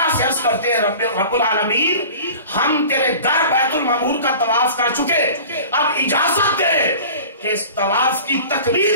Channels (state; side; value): inverted; both; correlation -0.40